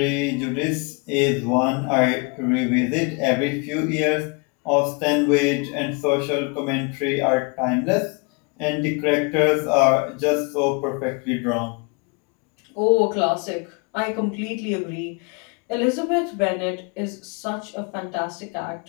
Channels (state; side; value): quieter; right; 31.9 dB